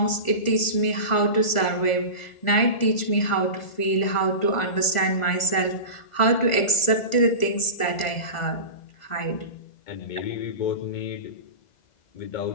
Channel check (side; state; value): right; late; 1.4 ms